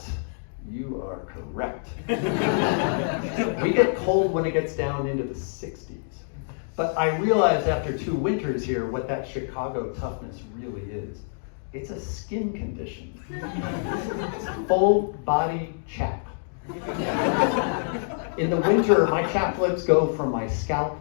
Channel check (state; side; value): silent; right; digital silence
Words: you are correct. We get cold when it gets down into the 60s. But I realized after 2 winters here what that Chicago toughness really is. It's a skin condition. It's full body chap. In the winter, my chaplets go from my scalp